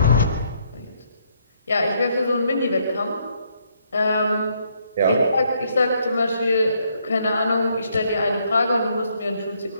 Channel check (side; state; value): both; inverted; correlation -0.71